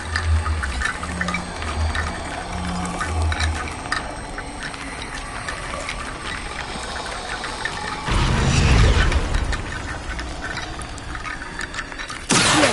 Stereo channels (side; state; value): both; identical; correlation 1.00